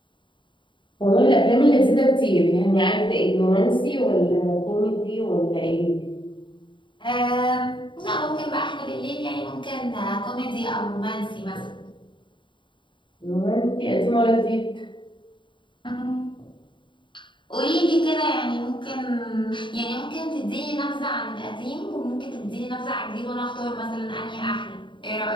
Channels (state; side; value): late; right; 0.23 ms